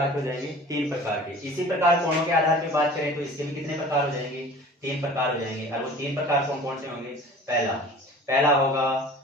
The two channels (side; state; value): both; normal; correlation 0.43